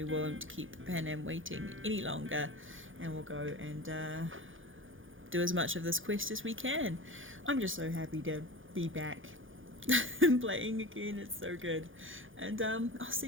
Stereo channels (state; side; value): late; left; 0.58 ms